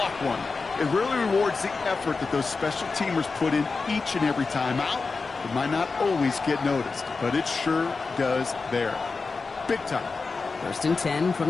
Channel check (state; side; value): quieter; right; 4.3 dB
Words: one. It really rewards the effort that those special teamers put in each and every time out. It might not always get noticed, but it sure does there. Big time. 1st and 10 from